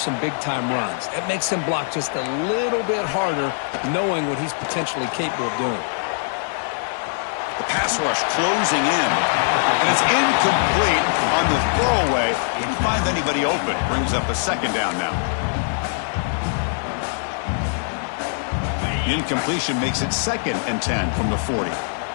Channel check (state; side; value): silent; right; digital silence